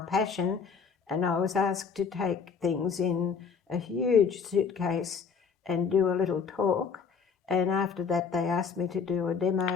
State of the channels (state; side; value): quieter; right; 6.0 dB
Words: and I was asked to take things in a huge suitcase and do a little talk, And after that, they asked me to do a